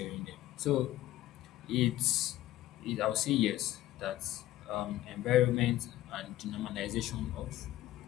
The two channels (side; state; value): right; quieter; 14.8 dB